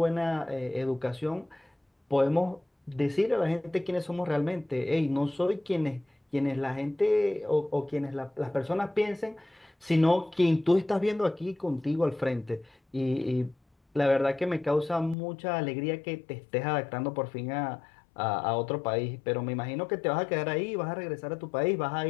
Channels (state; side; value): drops out; right; at 15.2 s